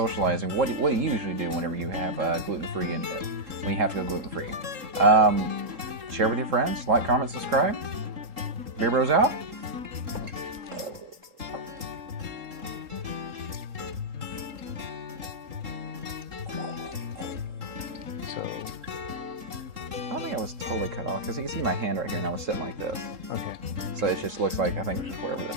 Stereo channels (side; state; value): left; late; 3.7 ms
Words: What do you usually do whenever you have gluten-free and when you have to go gluten-free? Share with your friends, like, comment, subscribe. Beer Bros out. I don't think I was totally cut off because you can see my hand right here and I was sitting like this. Okay. So it just looks like I think it's just whatever this